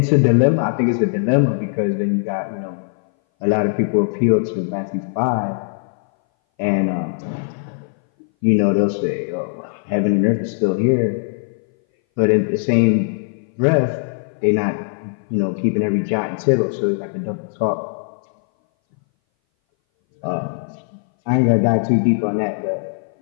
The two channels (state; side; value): silent; right; 60 dB below the other